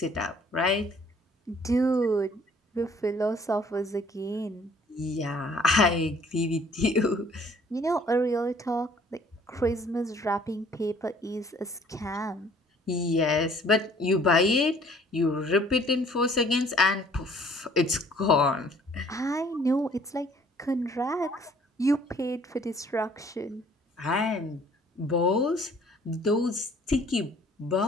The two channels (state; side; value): normal; both; correlation 0.57